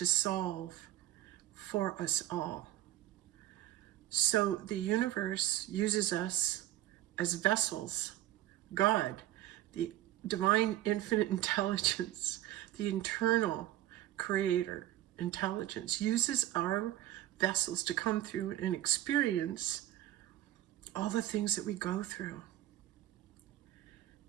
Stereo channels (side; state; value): left; quieter; 14.2 dB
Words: solve for us all. So the universe uses us as vessels. God, the divine infinite intelligence, the internal creator intelligence, uses our vessels to come through and experience all the things that we go through.